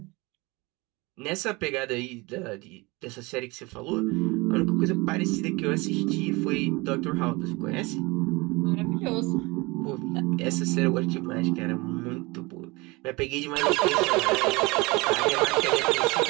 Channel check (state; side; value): quieter; left; 24.6 dB